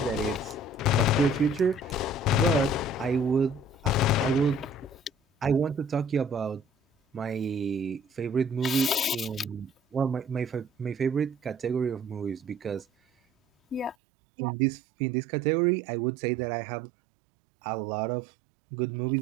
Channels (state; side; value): drops out; left; at 14.0 s